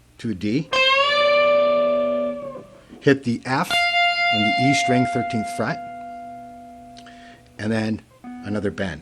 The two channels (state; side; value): identical; both; correlation 1.00